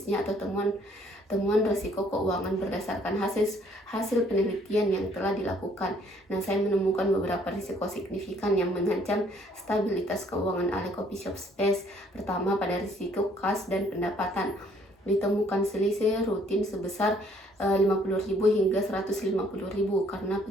atau temuan risiko keuangan berdasarkan hasil penelitian yang telah dilakukan. Nah, saya menemukan beberapa risiko signifikan yang mengancam stabilitas keuangan Ale Coffee Shop Space. Pertama, pada risiko kas dan pendapatan. Ditemukan selisih rutin sebesar 50.000 hingga 150.000 karena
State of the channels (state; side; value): normal; both; correlation 0.63